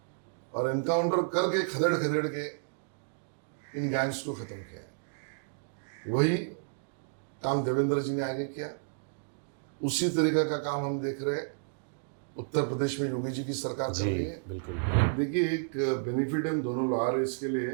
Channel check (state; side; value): silent; left; digital silence